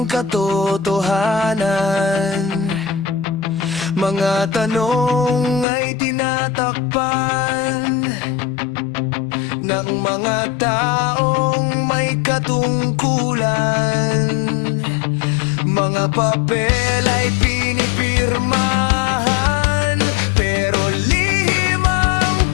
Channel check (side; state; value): right; drops out; at 5.7 s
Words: katotohanan. Mga tanong ay tinatakpan ng mga taong may katungkulan. Mga papel ay pinipirmahan, pero lihim ang